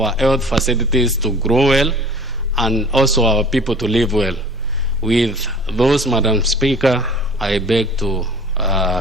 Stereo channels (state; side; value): normal; both; correlation 0.46